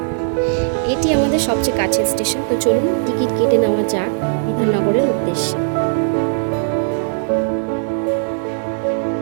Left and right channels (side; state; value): left; silent; 67 dB below the other